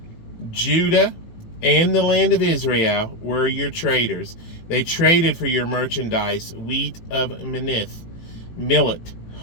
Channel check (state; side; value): late; right; 18 ms